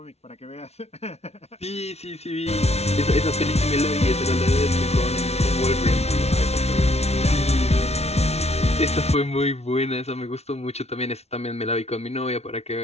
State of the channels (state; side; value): late; right; 0.31 ms